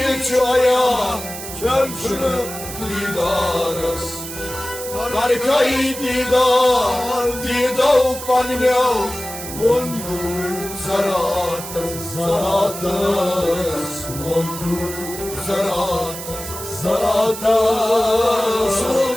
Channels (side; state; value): right; noise; hiss, 10 dB below the sound